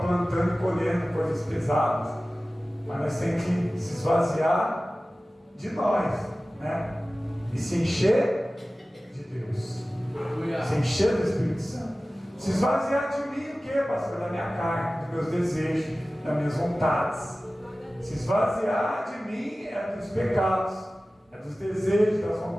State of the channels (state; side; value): normal; both; correlation 0.97